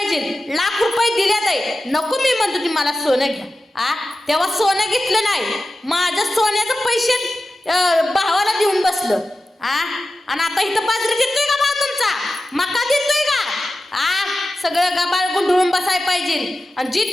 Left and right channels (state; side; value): normal; both; correlation 0.93